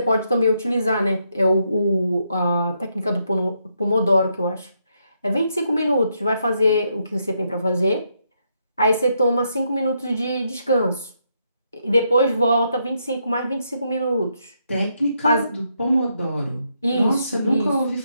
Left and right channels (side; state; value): both; inverted; correlation -0.78